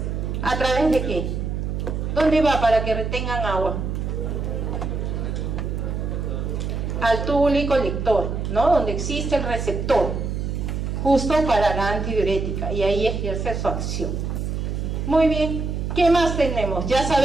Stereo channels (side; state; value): right; noise; hum, 3 dB below the sound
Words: ¿A través de qué? ¿Dónde va para que retengan agua? Al túbulo y colector, ¿no? Donde existe el receptor, justo para la antidiurética, y ahí ejerce su acción. Muy bien, ¿qué más tenemos? Ya